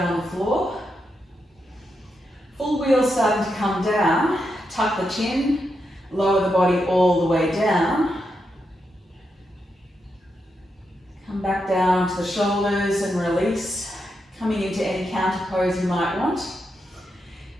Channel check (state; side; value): normal; both; correlation 0.84